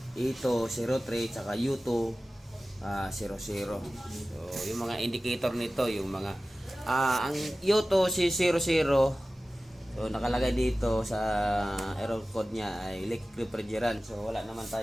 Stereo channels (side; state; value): both; normal; correlation 0.96